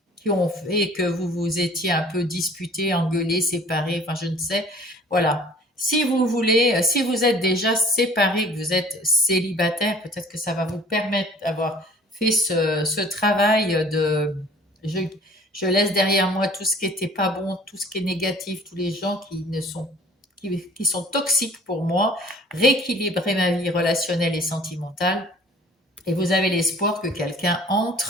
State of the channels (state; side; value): normal; both; correlation 0.50